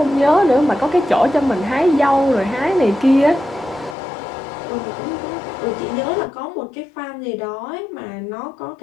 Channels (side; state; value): right; drops out; at 4.0 s